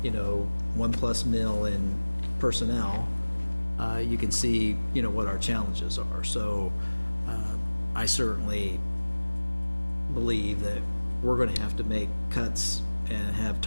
1+ mil in personnel. You can see, what our challenges are. So, I certainly believe that we're gonna have to make cuts and have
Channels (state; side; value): inverted; both; correlation -1.00